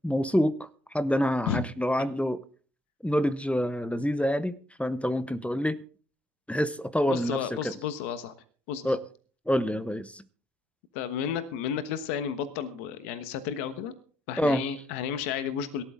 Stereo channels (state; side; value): normal; both; correlation 0.76